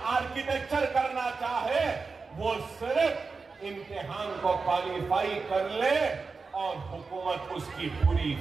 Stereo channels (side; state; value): left; quieter; 4.5 dB